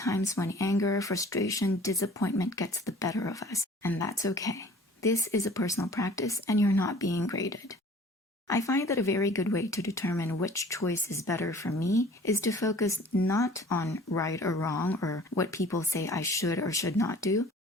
when anger, frustration, disappointment gets the better of us, and that's okay. This is a personal practice, and you're not being graded. I find that a very good way to determine which choice is better for me is to focus not on right or wrong or what people say I should or should not do,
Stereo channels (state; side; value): normal; both; correlation 0.48